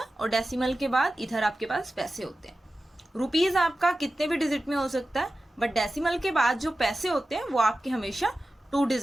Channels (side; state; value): both; normal; correlation 0.94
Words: और डेसिमल के बाद इधर आपके पास पैसे होते हैं. रुपीज आपका कितने भी डिजिट में हो सकता है, बट डेसिमल के बाद जो पैसे होते हैं वो आपके हमेशा 2